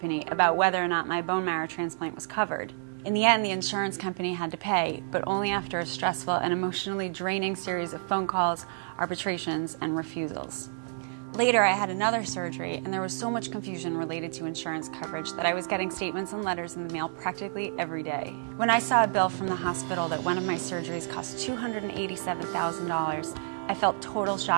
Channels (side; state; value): left; silent; digital silence